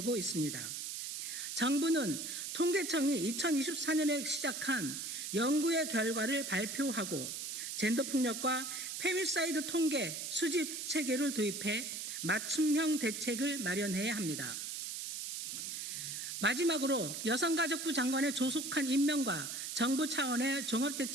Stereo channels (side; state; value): right; noise; hiss, 5 dB below the sound